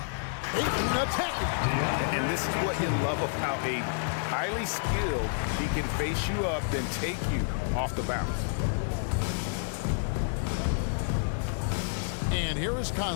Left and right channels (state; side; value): silent; right; digital silence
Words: Ayton attacking. And this is what you love about a highly skilled. He can face you up, then take you off the bounce. And here is